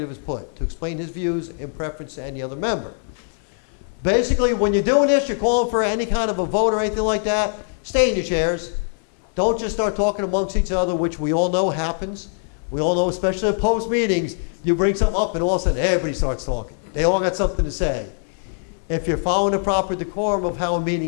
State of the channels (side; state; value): right; silent; 64 dB below the other